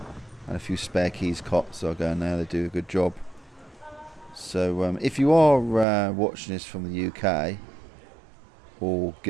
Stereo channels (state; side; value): drops out; left; at 5.9 s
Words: and a few spare keys cops, so I go in there. They do a good job. So if you are watching this from the UK or